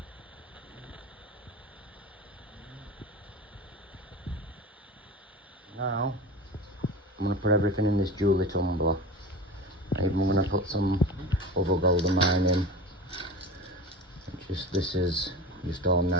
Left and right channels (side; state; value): both; normal; correlation 0.32